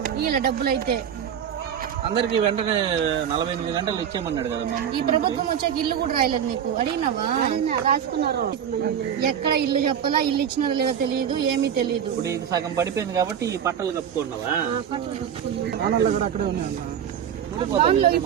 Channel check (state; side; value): quieter; left; 8.8 dB